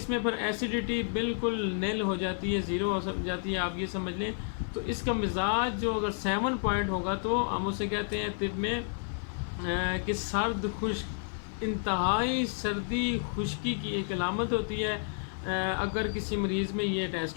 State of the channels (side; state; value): right; silent; 57 dB below the other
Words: میں پھر ایسیڈیٹی بالکل نیل ہو جاتی ہے، زیرو ہو جاتی ہے، آپ یہ سمجھ لیں. تو اس کا مزاج جو اگر 7 پوائنٹ ہوگا تو ہم اسے کہتے ہیں طب میں کہ سرد خشک، انتہائی سردی خشکی کی ایک علامت ہوتی ہے. اگر کسی مریض میں یہ